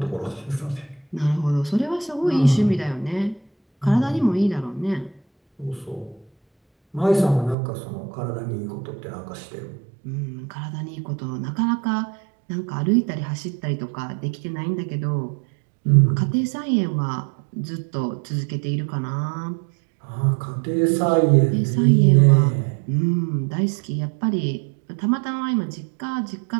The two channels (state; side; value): drops out; left; at 7.6 s